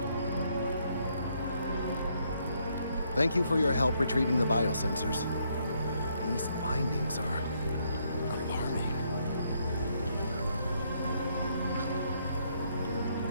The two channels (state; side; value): inverted; both; correlation -0.73